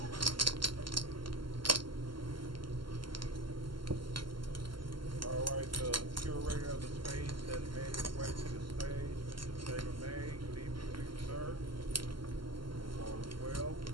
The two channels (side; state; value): left; late; 0.72 ms